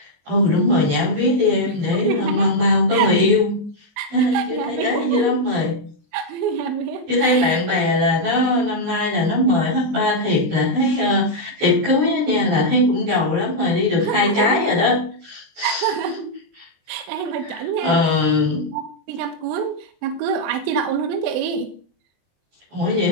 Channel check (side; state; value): left; late; 23 ms